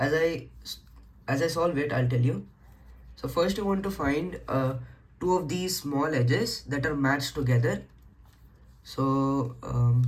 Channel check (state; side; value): identical; both; correlation 1.00